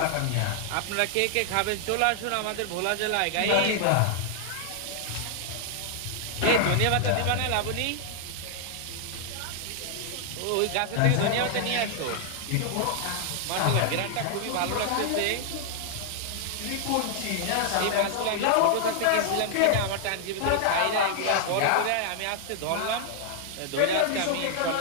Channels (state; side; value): different; both; correlation 0.00